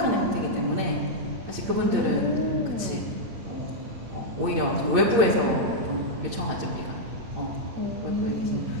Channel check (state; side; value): late; left; 8.8 ms